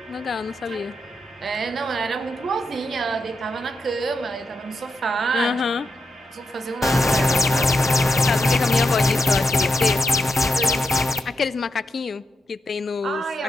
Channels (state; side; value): normal; both; correlation 0.85